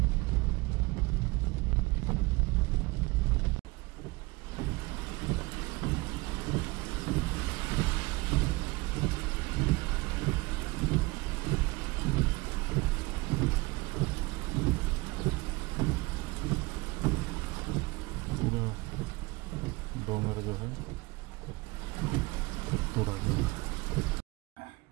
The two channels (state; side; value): quieter; left; 23.2 dB